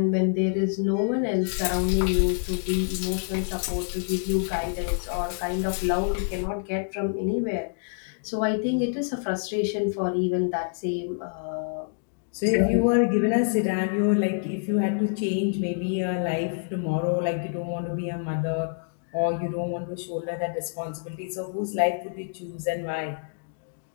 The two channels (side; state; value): right; silent; digital silence